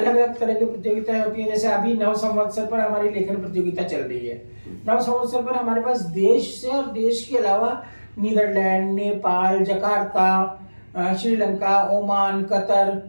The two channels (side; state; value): both; inverted; correlation -1.00